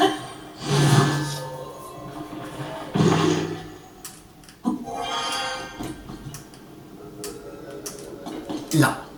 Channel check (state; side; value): identical; both; correlation 1.00